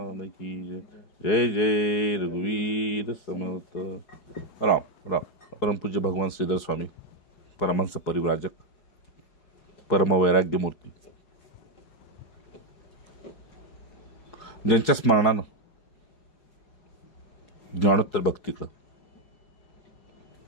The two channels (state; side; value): late; right; 4.7 ms